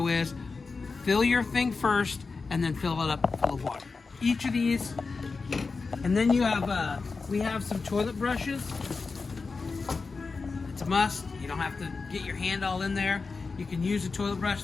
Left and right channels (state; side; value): quieter; right; 4.4 dB